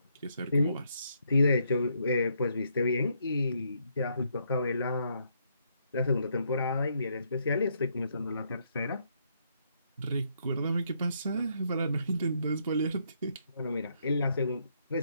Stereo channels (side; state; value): both; inverted; correlation -0.74